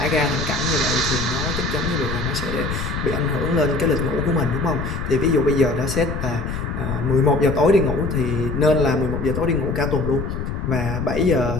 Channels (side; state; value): left; noise; rumble, 4 dB below the sound